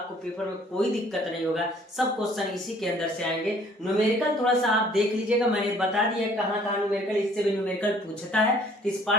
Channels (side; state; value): both; normal; correlation 0.58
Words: पेपर में कोई दिक्कत नहीं होगा, सब क्वेश्चन इसी के अंदर से आएंगे। न्यूमेरिकल थोड़ा सा आप देख लीजिएगा, मैंने बता दिया कहाँ कहाँ न्यूमेरिकल, इससे भी न्यूमेरिकल पूछता है, तो इस